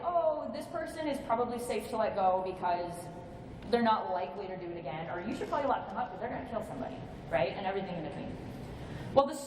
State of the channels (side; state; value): both; identical; correlation 1.00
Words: oh, this person is probably safe to let go because they're not likely to do it again, or you should probably lock them up because they're going to kill somebody, right? And everything in between. Well, the